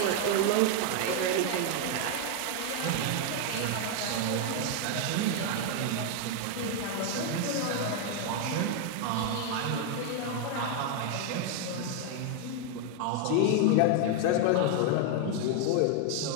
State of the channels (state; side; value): different; both; correlation 0.00